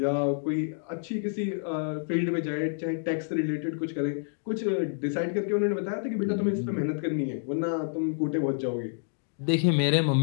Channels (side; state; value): right; silent; digital silence